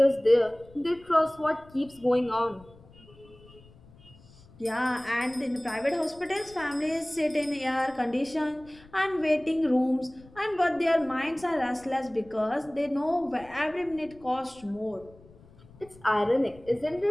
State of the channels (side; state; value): left; noise; rumble, 24 dB below the sound